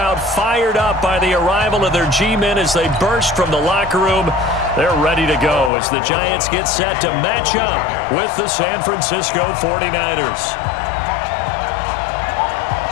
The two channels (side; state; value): right; drops out; at 5.7 s